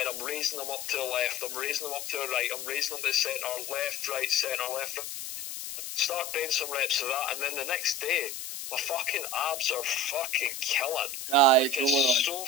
I'm raising them up to the left, I'm raising them up to the right, I'm raising them to the centre, left, right, centre, left, right. Start doing some reps of that, and then the next day, my fucking abs are fucking killing. Aye, like, it's so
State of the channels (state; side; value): noise; left; hiss, 7 dB below the sound